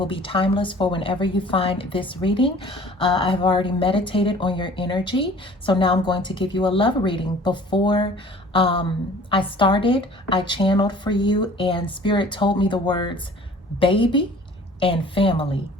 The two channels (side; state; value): both; normal; correlation 0.49